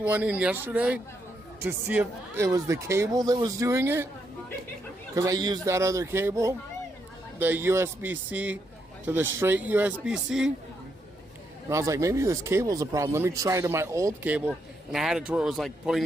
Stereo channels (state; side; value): normal; both; correlation 0.79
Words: one, in yesterday to see if it was the cable that was doing it. Because I used that other cable, the USB-C to the straight USB-C. And I was like, maybe this cable's a problem. Let me try to my old cable. And I had it to where it was like